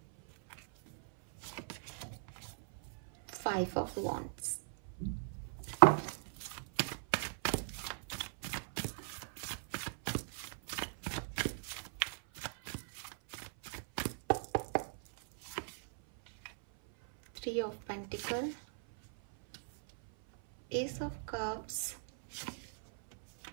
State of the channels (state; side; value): silent; left; 52 dB below the other